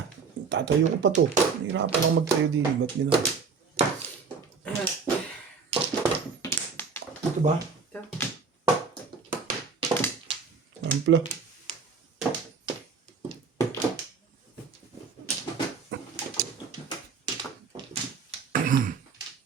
Tatayo ko pa to. Hirapan lang magtayo din. Ba't gano'n? Ito ba? Ito. Ampla.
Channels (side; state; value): left; quieter; 5.2 dB